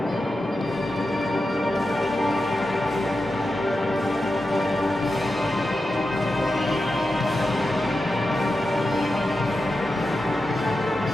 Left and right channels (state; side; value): normal; both; correlation 0.91